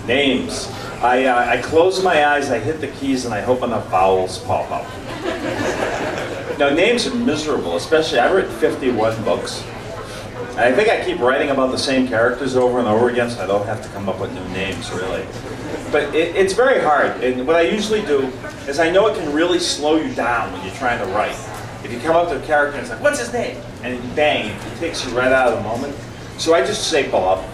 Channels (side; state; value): both; identical; correlation 1.00